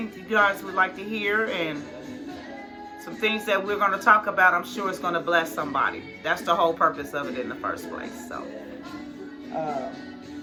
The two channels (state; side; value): identical; both; correlation 1.00